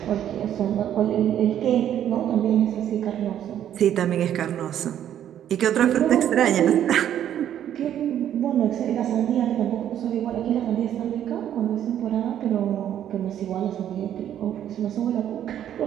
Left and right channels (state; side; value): quieter; left; 10.6 dB